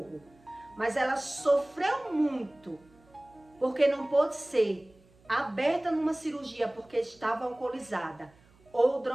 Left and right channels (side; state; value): right; noise; hum, 29 dB below the sound